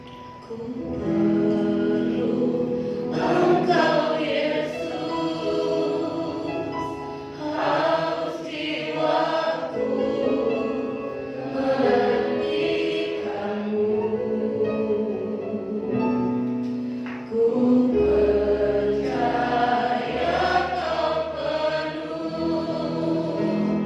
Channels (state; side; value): identical; both; correlation 1.00